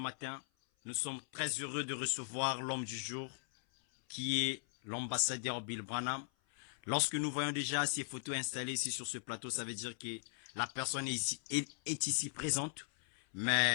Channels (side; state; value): right; silent; 52 dB below the other